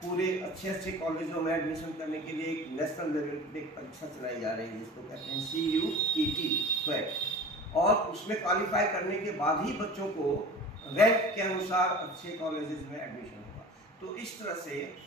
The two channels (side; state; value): both; normal; correlation 0.38